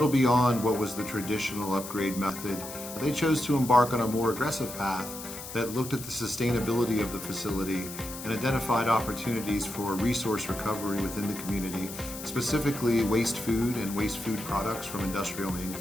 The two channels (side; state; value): left; noise; hiss, 11 dB below the sound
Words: beyond what was the traditional upgrade method. They chose to embark on a more aggressive path that looked at the sustainability of the facility and identified opportunities for resource recovery within the community, specifically waste food and waste food products from industrial